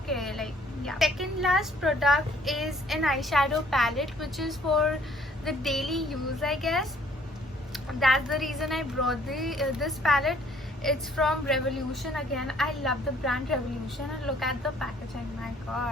Like, yeah. Second last product is an eyeshadow palette, which is for the daily use, I guess. That's the reason I brought this palette. It's from Revolution again. I love the brand Revolution, and look at the packaging. My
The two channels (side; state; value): both; normal; correlation 0.60